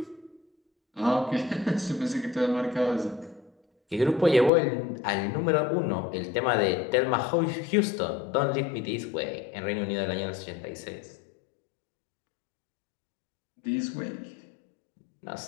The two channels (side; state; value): right; drops out; at 4.5 s